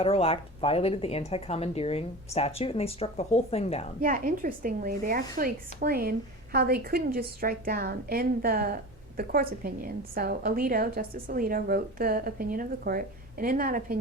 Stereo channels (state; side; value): normal; both; correlation 0.32